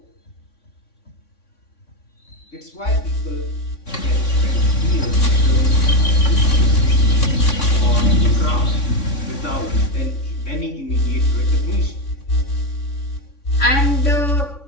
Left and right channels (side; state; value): right; late; 3.6 ms